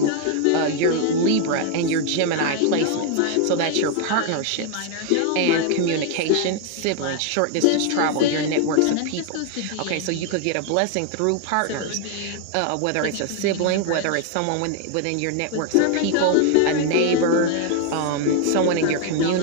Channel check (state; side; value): different; both; correlation 0.00